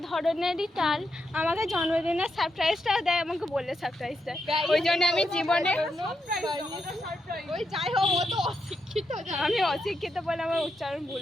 ধরনেরই টাল, আমাকে জন্মদিনের সারপ্রাইজটাও দেয়, আমাকে বললে সারপ্রাইজ দেয়, ওই জন্য আমি জীবনে ওই যাই হোক ও তো অশিক্ষিত, আমি অশিক্ষিত বলে আমার উচ্চারণ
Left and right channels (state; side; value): normal; both; correlation 0.83